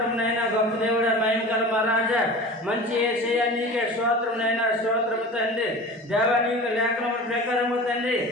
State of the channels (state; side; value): normal; both; correlation 0.36